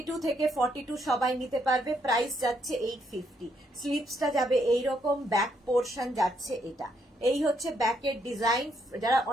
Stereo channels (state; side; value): normal; both; correlation 0.74